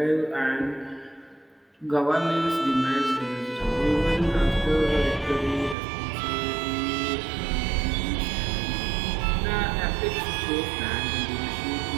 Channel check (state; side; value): drops out; left; at 5.8 s